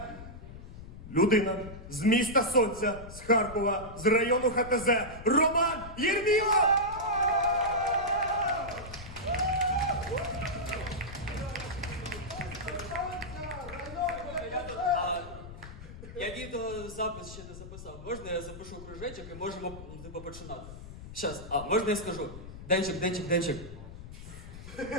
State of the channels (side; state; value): left; noise; rumble, 13 dB below the sound